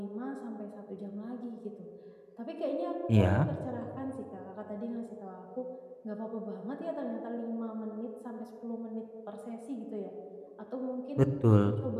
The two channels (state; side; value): identical; both; correlation 1.00